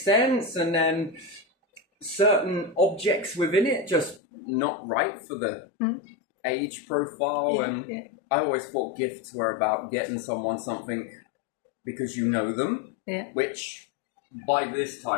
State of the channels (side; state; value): right; drops out; at 4.2 s